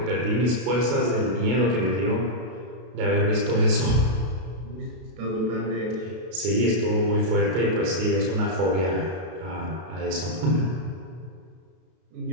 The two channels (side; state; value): left; late; 32 ms